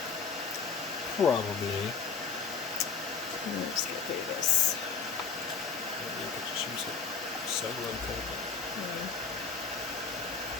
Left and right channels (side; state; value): right; quieter; 5.3 dB